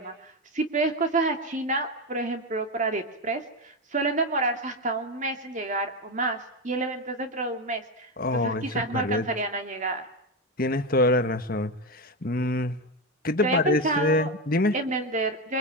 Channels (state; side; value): normal; both; correlation 0.13